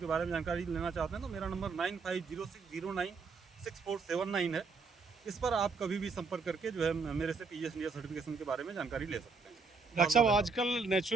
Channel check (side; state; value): left; quieter; 4.5 dB